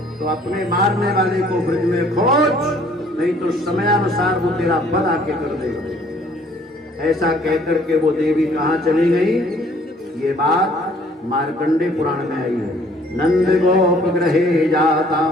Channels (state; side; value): normal; both; correlation 0.58